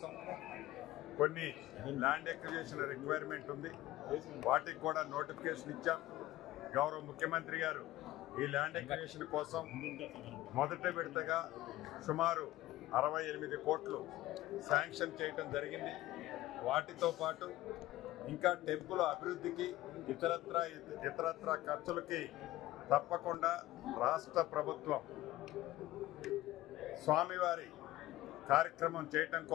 కొన్ని ల్యాండ్ ఎక్విజిషన్ రిక్వైర్మెంట్ ఉంది, వాటికి కూడా నోటిఫికేషన్ ఇచ్చాం. గౌరవ ముఖ్యమంత్రి గారు ఈ ల్యాండ్ ఎక్విజిషన్ కోసం మొదటి విడతగా సుమారు 68 కోట్లు శాంక్షన్ చేయడం జరిగింది. వాటితో పాటు ఇంకా టెంపుల్ అభివృద్ధికి ఇతరత్ర ఖర్చులకి తప్పకుండా రాష్ట్ర ప్రభుత్వం స్వామివారి కార్యక్రమం చేయటం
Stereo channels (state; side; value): quieter; right; 16.3 dB